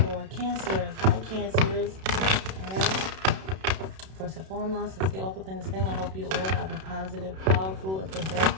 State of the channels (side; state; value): left; late; 32 ms